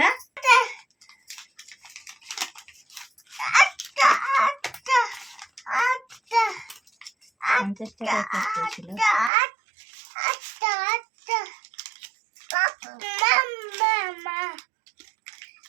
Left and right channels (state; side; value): drops out; left; at 9.3 s